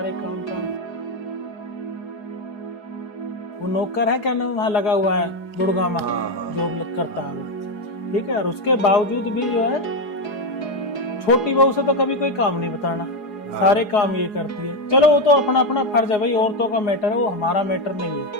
काम वो नौकर है क्या नाम वहाँ लगा हुआ है गुड़गांव में, हाँ। जॉब करता है वो, ठीक है। और उसके बावजूद भी जो है छोटी बहू से तो कभी कोई काम नहीं बताना, सारे काम ये करती है। चलो वो तो अपना अपना फर्ज है भाई, औरतों का मैटर है, वो हमारा मैटर नहीं है,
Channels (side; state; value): right; late; 4.8 ms